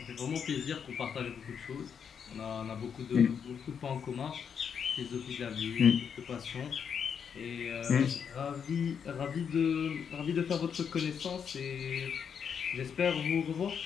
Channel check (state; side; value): quieter; right; 7.2 dB